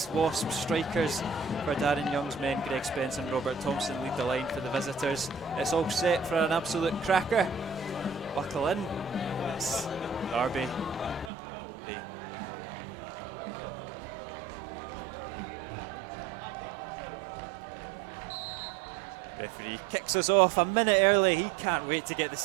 strikers. For Darren Young's men, Greg Spence and Robert Thompson lead the line for the visitors. It's all set for an absolute cracker. Buckle in. It's Derby. Referee kicks us off a minute early. He can't wait to get the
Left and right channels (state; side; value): drops out; left; at 11.3 s